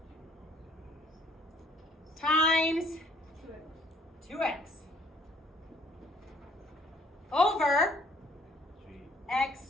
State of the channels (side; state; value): both; normal; correlation 0.62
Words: times 2x over